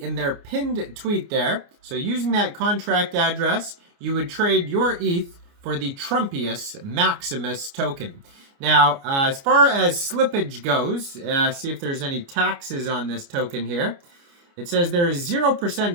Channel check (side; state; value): left; late; 29 ms